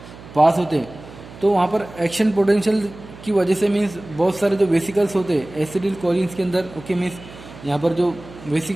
पास होते हैं तो वहाँ पर एक्शन पोटेंशियल की वजह से मीन्स बहुत सारे जो वेसिकल्स होते हैं एसिडिल कोलिन्स के अंदर। ओके, मीन्स यहाँ पर जो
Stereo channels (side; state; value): right; noise; hum, 18 dB below the sound